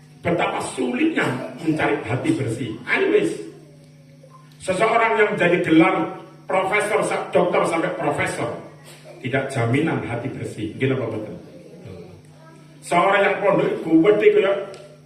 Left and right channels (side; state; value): both; identical; correlation 1.00